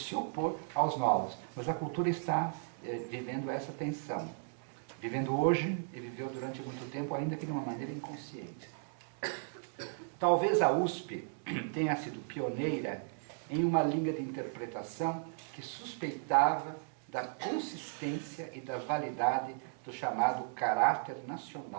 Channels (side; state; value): left; silent; digital silence